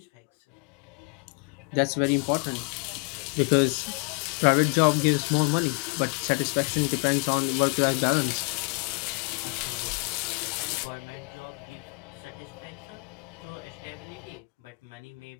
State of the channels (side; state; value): right; quieter; 34.8 dB